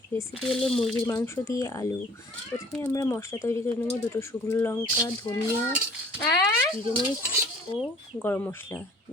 রেসিপি হলো মুরগির মাংস দিয়ে আলু। প্রথমে আমরা মশলা তৈরি করে নেব। 2টো শুকনো লঙ্কা, ধনিয়া, জিরে মরিচ ও গরম মশলা।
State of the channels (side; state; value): both; normal; correlation 0.51